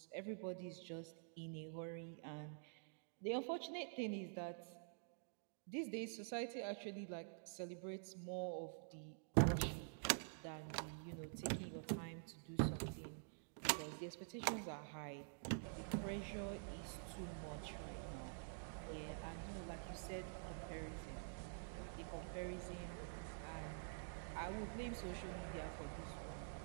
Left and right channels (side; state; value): left; silent; digital silence